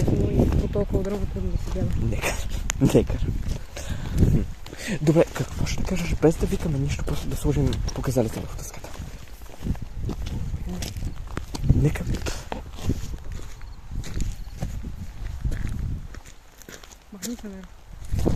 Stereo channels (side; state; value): both; identical; correlation 1.00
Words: и по толкова дърво трудно да се гледа. Негър. Добре, какво ще кажеш, без да викаме нищо, просто да сложим показалите върху дъската? Нека. Махни се, не.